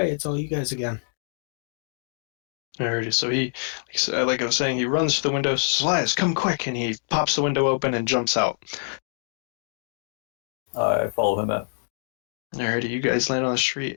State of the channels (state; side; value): silent; right; digital silence